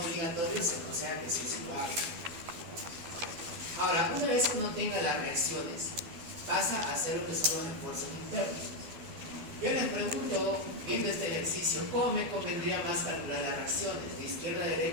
se aconseja que sí lo haga. Ahora, una vez que uno tenga las reacciones, pasa a hacer lo que son los esfuerzos internos. Yo les pregunto, viendo este ejercicio, ¿cómo me convendría más calcular las reacciones? ¿De izquierda a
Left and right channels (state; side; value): late; left; 12 ms